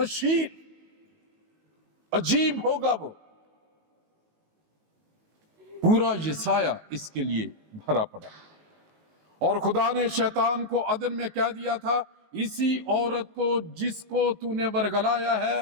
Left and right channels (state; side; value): late; left; 19 ms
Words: عجیب ہوگا وہ۔ پورا یسایہ اس کے لیے بھرا پڑا، اور خدا نے شیطان کو عدن میں کہہ دیا تھا، اسی عورت کو جس کو تو نے ورگلایا ہے،